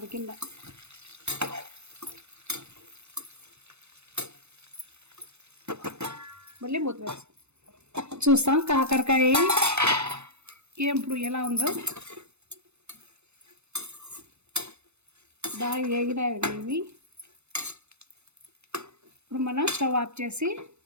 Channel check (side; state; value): left; late; 0.81 ms